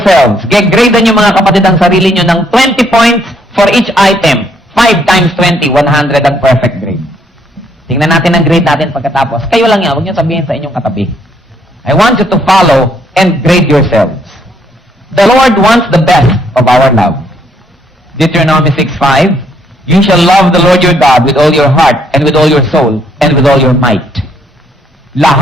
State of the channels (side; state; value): both; normal; correlation 0.70